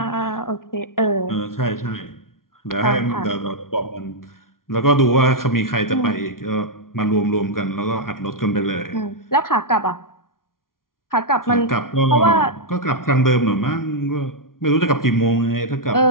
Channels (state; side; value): late; right; 0.92 ms